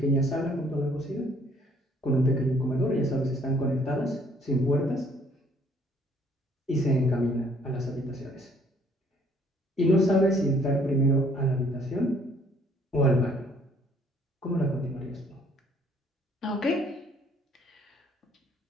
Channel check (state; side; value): normal; both; correlation 0.62